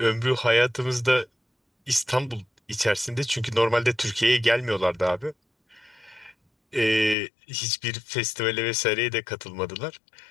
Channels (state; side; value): drops out; right; at 7.2 s